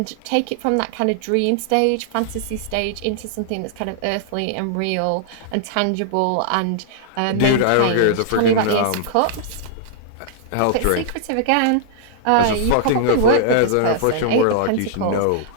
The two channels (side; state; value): both; different; correlation -0.01